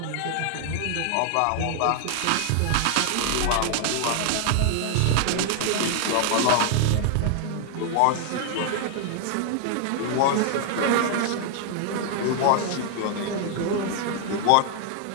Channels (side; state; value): both; different; correlation 0.00